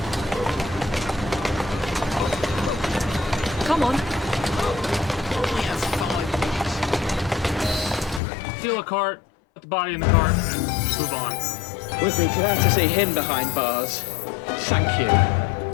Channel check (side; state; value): right; drops out; at 8.2 s